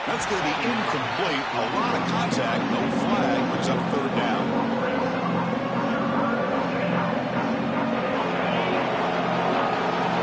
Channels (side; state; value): both; identical; correlation 1.00